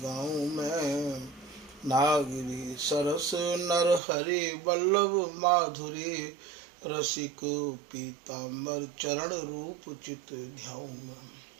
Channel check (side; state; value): left; drops out; at 4.0 s